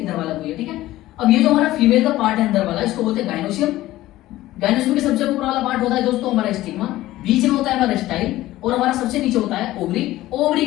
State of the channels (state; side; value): quieter; right; 16.0 dB